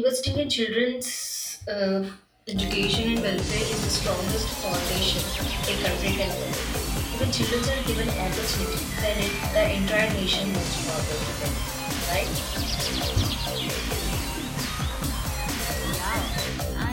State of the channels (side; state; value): both; identical; correlation 1.00